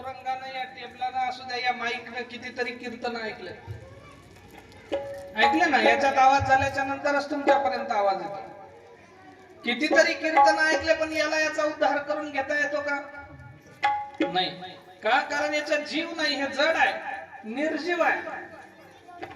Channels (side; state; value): both; identical; correlation 1.00